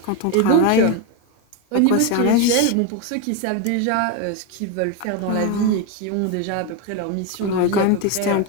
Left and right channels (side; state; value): both; different; correlation 0.03